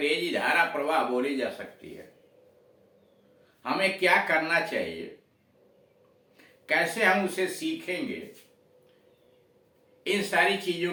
धारा प्रवाह बोली जा सकती है, हमें क्या करना चाहिए, कैसे हम उसे सीखेंगे, इन सारी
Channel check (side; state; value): both; identical; correlation 1.00